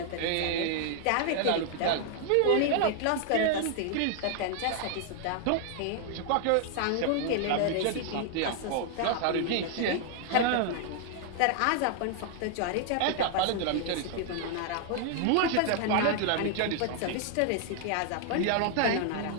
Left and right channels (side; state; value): both; different; correlation 0.00